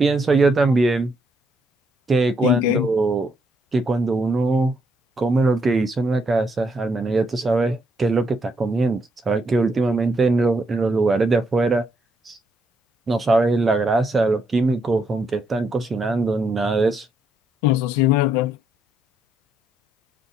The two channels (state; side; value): normal; both; correlation 0.75